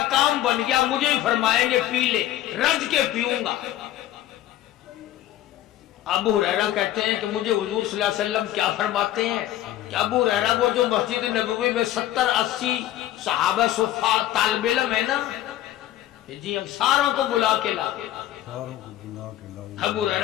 کام بن گیا، مجھے ہی فرمائیں گے پی لے، رج کے پیوں گا۔ ابو ہریرہ کہتے ہیں کہ مجھے حضور صلی اللہ علیہ وسلم کیا فرماتے ہیں کہ ابو ہریرہ وہ جو مسجد نبوی میں 70-80 صحابہ صفا طالب علم ہے نا، جی ہم ساروں کو بلا کے لا۔ ابو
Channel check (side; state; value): right; quieter; 13.4 dB